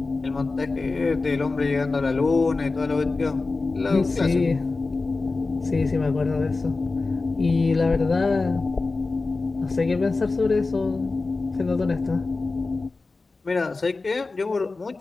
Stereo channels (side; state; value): right; quieter; 3.7 dB